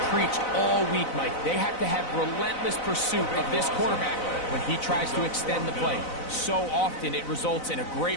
preached all week, Mike. They have to have relentless pursuit of this quarterback when he tries to extend the play. So often it results in a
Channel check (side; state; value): right; late; 4.0 ms